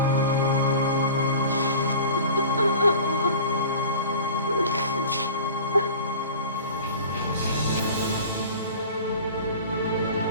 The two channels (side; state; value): both; inverted; correlation -0.40